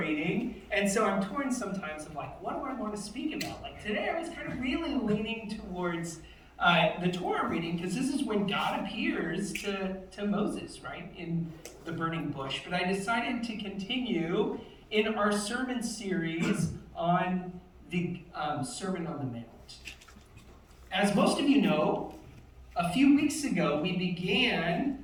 And so I'm torn sometimes of like, what do I want to speak about? Like today I was kind of really leaning towards the Torah reading, because this is when God appears to Moses, right, in the burning bush. But I decided to continue in our sermon series on the Sermon on the Mount. As most of you know, a few weeks ago we began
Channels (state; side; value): identical; both; correlation 1.00